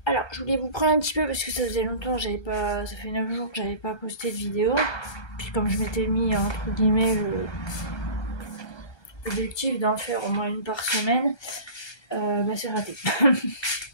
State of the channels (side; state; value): right; late; 1.3 ms